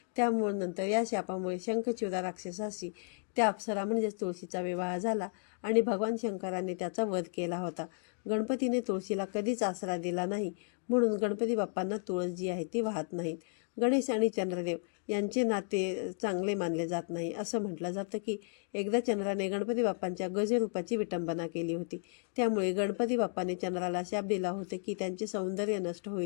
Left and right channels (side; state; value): right; silent; 55 dB below the other